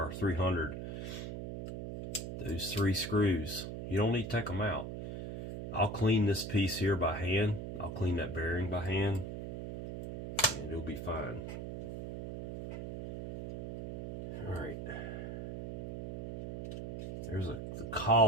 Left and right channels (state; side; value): noise; right; hum, 7 dB below the sound